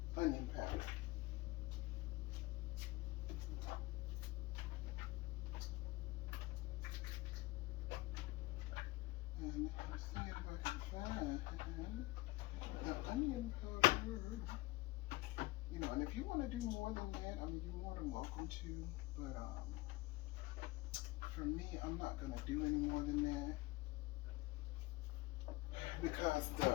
onion powder. And let's see if I can find the onion powder. You know, and if you want to do more than that, I mean, you're more than welcome to. But for me, I'm not gonna do any more than that, because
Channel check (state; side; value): quieter; right; 19.8 dB